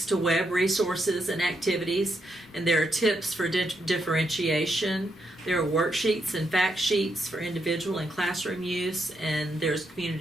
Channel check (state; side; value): normal; both; correlation 0.80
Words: to web resources and activities, and there are tips for differentiation. There are worksheets and fact sheets for individual and classroom use, and there's